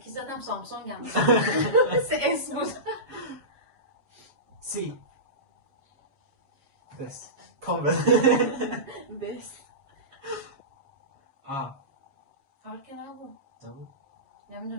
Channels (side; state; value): left; late; 7.3 ms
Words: زدم سامسونگ هم سه اس بود. سی بس کامل بس که نبود نبود